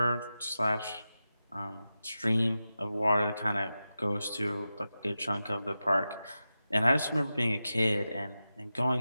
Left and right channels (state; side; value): inverted; both; correlation -0.92